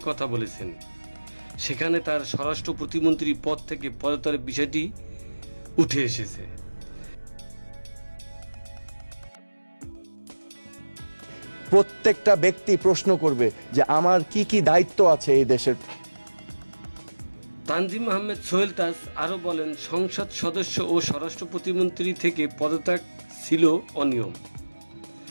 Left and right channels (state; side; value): inverted; both; correlation -1.00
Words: কথা বলেছেন। সেখানে তার স্বরাষ্ট্র প্রতিমন্ত্রী পদ থেকে পদত্যাগের বিষয়টি উঠে এসেছে। প্রত্যেকটা ব্যক্তি প্রশ্ন করবে যে আমার কি কি দায়িত্ব আছে এই দেশের। তানজিম আহমেদ সোহেল তাজ আরও বলেন, সংসদ সদস্য ও স্বরাষ্ট্র প্রতিমন্ত্রী থেকে পদত্যাগ ছিল অনিয়ম,